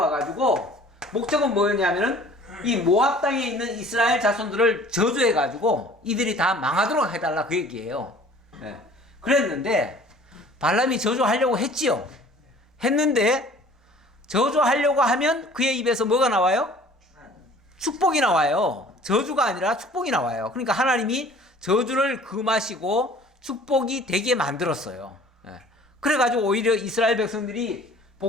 목적은 뭐였냐면은 이 모압 땅에 있는 이스라엘 자손들을 저주해가지고 이들이 다 망하도록 해달라 그 얘기예요. 그랬는데 발람이 저주하려고 했지요. 했는데 저주하려고 하면 그의 입에서 뭐가 나와요? 축복이 나와요. 저주가 아니라 축복이 나와요. 그러니까 하나님이 저주를 금하시고 축복이 되게 만들었어요. 그래가지고 오히려 이스라엘 백성들이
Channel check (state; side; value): normal; both; correlation 0.50